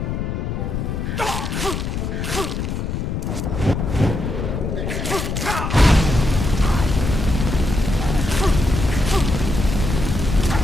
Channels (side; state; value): left; noise; rumble, 2 dB below the sound